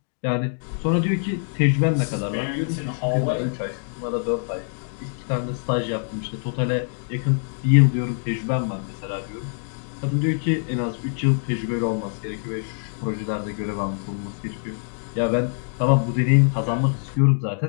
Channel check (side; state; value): right; silent; 57 dB below the other